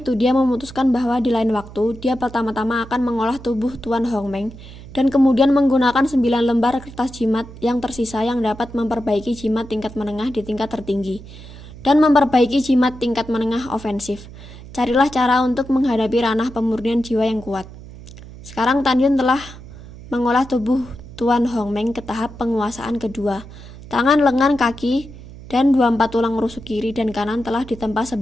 dia memutuskan bahwa di lain waktu, dia pertama-tama akan mengolah tubuh Tuan Hongmeng dan kemudian menggunakan 9 lembar kertas jimat yang tersisa yang dapat memperbaiki jimat tingkat menengah di tingkat tertinggi dan memperbaiki jimat tingkat menengah ofensif. Carilah cara untuk menghadapi ranah pemurnian jiwa yang kuat. Sekarang Tanyun telah mengolah tubuh Tuan Hongmeng ke tahap penguasaan kedua. Tangan, lengan, kaki, dan 24 tulang rusuk kiri dan kanan telah ditempa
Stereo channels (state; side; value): noise; right; hum, 16 dB below the sound